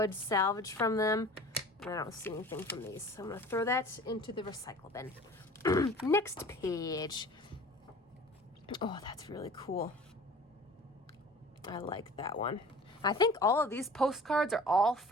salvage from them. And I don't see anything from these. So I'm going to throw that into the recycle bin. Next page. Oh, that's really cool. I like that one. I think all of these postcards are all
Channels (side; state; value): both; normal; correlation 0.43